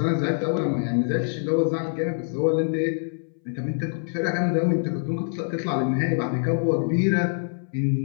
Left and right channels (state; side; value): silent; right; 62 dB below the other